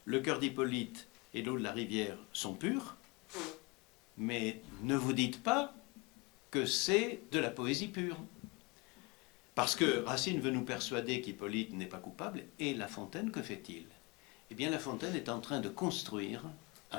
le cœur d'Hippolyte et l'eau de la rivière sont purs, mais ne vous dites pas que c'est de la poésie pure. Parce que Racine veut nous persuader qu'Hippolyte n'est pas coupable, et La Fontaine, que fait-il? Eh bien, La Fontaine est en train de construire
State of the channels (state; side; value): quieter; right; 27.4 dB